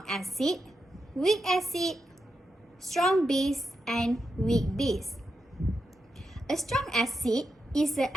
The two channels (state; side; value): normal; both; correlation 0.86